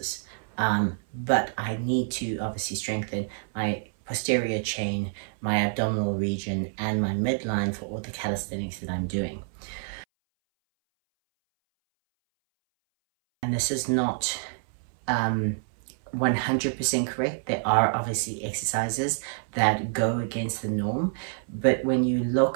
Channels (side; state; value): left; silent; 60 dB below the other